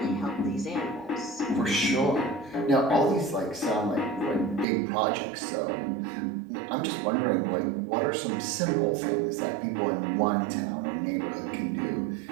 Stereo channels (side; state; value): left; drops out; at 4.7 s